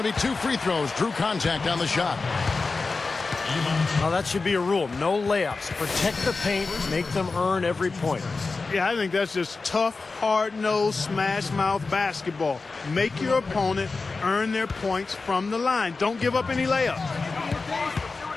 to be 2 free throws. Drew contact on the shot. Well, that should be a rule. No layups. Protect the paint. Make them earn every point. Yeah, I think that's just tough, hard-nosed, smash-mouth basketball. Make your opponent earn their points from the line. Don't give up any layups.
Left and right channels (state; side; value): quieter; right; 4.0 dB